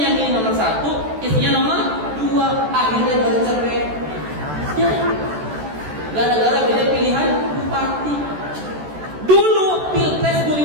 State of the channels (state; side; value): late; left; 14 ms